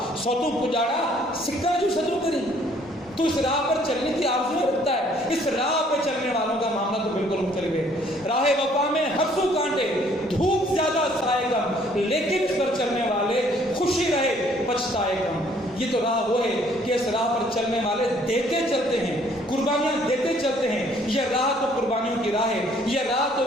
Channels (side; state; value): both; normal; correlation 0.61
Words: سوتو پجاڑا سکہ جو صدر کری. تو اس راہ پر چلنے کی آرزو رکھتا ہے. اس راہ پہ چلنے والوں کا معاملہ تو بالکل مختلف ہے. راہ وفا میں ہر سو کانٹے, دھوپ زیادہ سائے کم, لیکن اس پر چلنے والے خوشی رہے پچھتائے کم. یہ تو راہ وہ ہے کہ اس راہ پر چلنے والے دیتے چلتے ہیں, قربانیاں دیتے چلتے ہیں. یہ راہ تو قربانیوں کی راہ ہے, یہ راہ تو